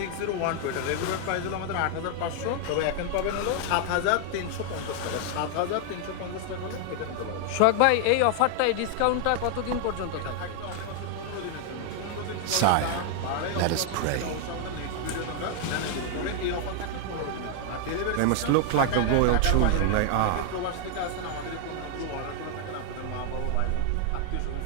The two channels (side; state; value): both; different; correlation 0.00